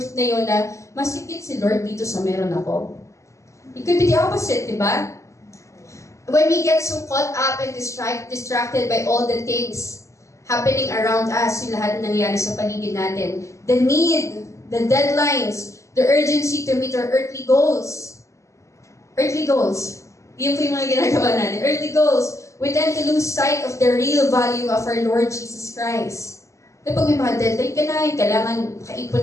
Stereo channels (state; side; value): late; right; 0.15 ms